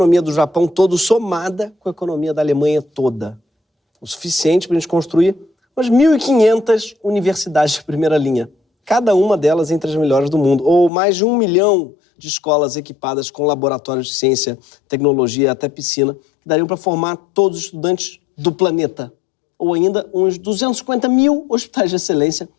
do Japão todo, somada com a economia da Alemanha toda. O suficiente para a gente construir umas 1.500 universidades de primeira linha. Cada uma delas entre as melhores do mundo. Ou mais de 1 milhão de escolas equipadas com laboratórios de ciência, tecnologia e até piscina, que dariam para formar todos os estudantes do planeta. Ou ainda uns 250 mil hospitais de excelência,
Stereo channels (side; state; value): right; drops out; at 10.9 s